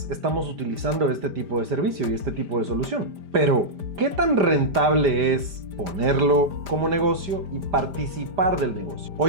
estamos utilizando este tipo de servicio y este tipo de solución. Pero, ¿qué tan rentable es ponerlo como negocio y participar del negocio?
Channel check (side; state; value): left; late; 5.0 ms